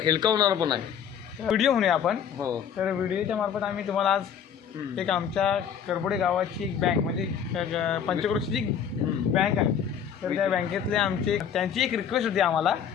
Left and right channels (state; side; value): quieter; right; 8.1 dB